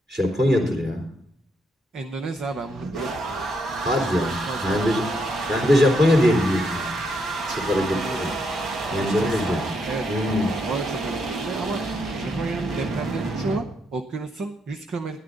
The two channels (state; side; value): normal; both; correlation 0.78